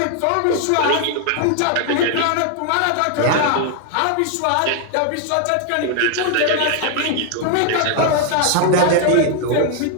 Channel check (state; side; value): different; both; correlation 0.00